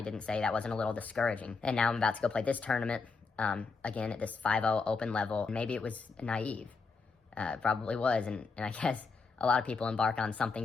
didn't say that wasn't a little discouraging. And now I'm about to go play this tournament, again, at this 5-0 open level. Maybe it was naive. Probably was. And I guess a lot of people embark on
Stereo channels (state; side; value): quieter; right; 4.6 dB